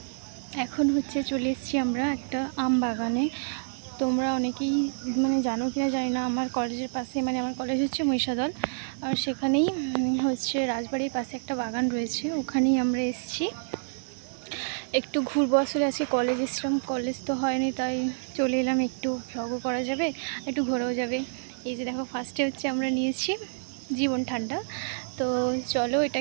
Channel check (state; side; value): silent; left; 59 dB below the other